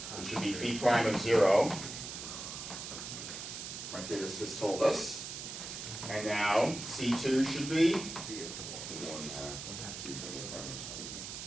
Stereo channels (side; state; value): right; noise; hiss, 8 dB below the sound